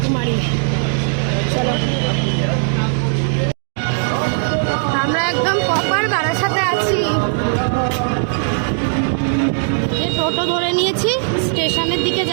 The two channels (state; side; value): silent; left; digital silence